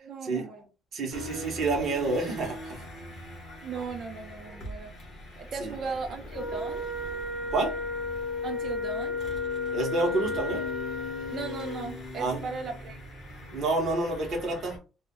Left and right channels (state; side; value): normal; both; correlation 0.34